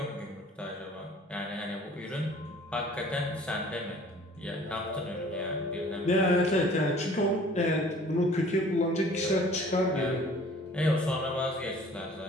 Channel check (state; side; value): normal; both; correlation 0.51